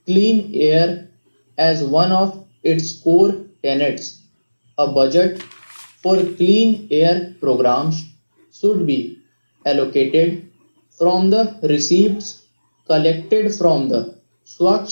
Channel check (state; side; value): inverted; both; correlation -1.00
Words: clean air as one of its core tenets. A budget for clean air programs should be allocated from the receipts collected from the